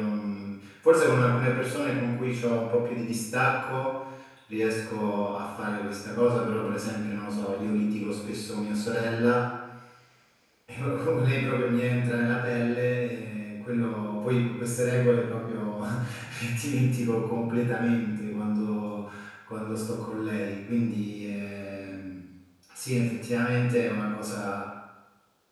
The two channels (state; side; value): identical; both; correlation 1.00